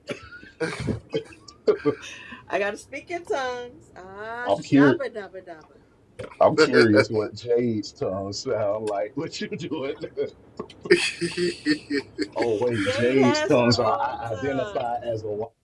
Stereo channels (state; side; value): identical; both; correlation 1.00